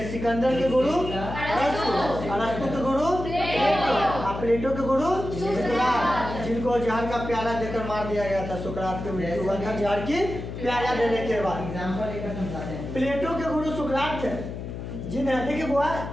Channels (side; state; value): left; noise; hum, 8 dB below the sound